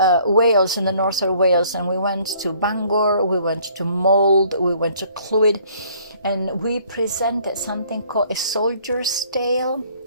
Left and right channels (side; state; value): both; inverted; correlation -0.59